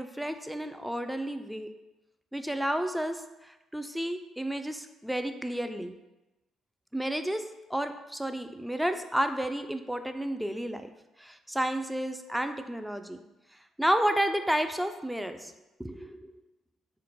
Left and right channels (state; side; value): normal; both; correlation 0.95